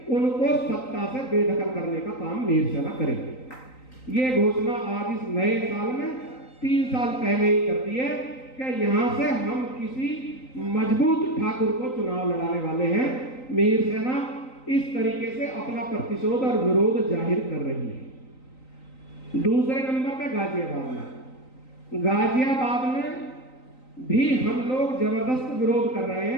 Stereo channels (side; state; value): right; late; 3.9 ms